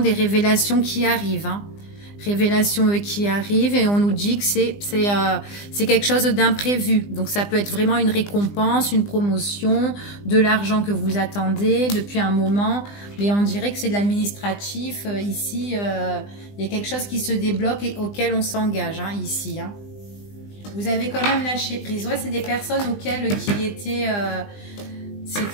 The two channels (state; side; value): late; right; 20 ms